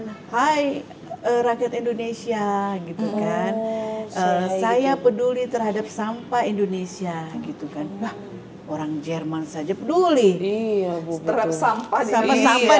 hai rakyat Indonesia gitu kan, saya peduli terhadap sampah Indonesia gitu kan. Wah, orang Jerman saja peduli terhadap sampah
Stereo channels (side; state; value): both; identical; correlation 1.00